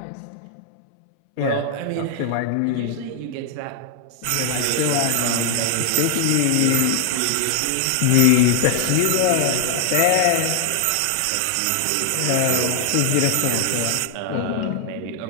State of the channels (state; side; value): different; both; correlation 0.00